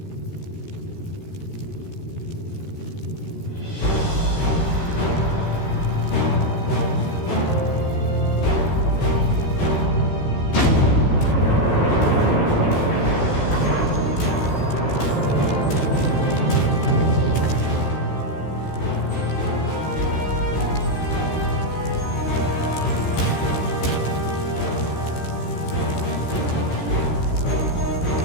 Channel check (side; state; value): right; late; 15 ms